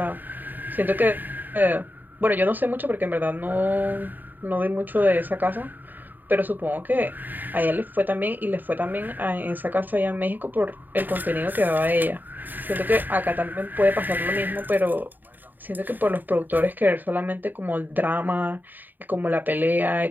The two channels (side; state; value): left; late; 0.089 ms